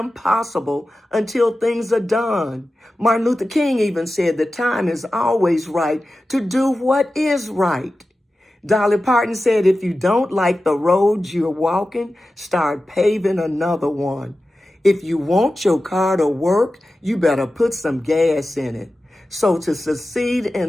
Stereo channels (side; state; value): both; normal; correlation 0.94